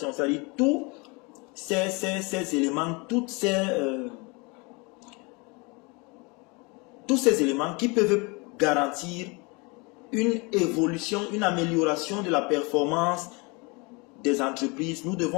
c'est-à-dire tous ces éléments, tous ces éléments qui peuvent garantir une évolution, une amélioration de la performance des entreprises. Nous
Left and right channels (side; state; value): right; quieter; 28.7 dB